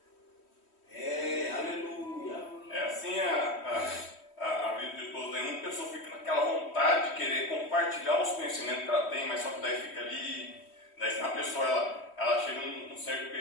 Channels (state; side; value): late; right; 3.1 ms